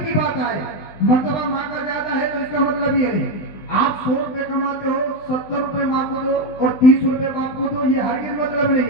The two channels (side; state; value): right; late; 20 ms